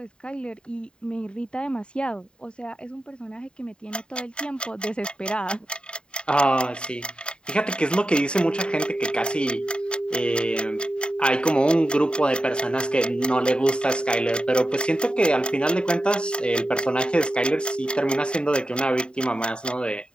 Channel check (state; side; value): late; right; 0.051 ms